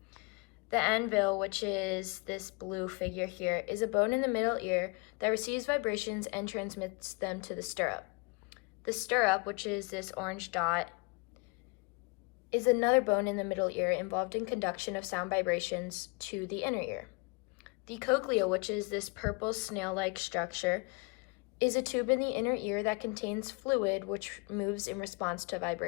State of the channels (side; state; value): right; quieter; 30.3 dB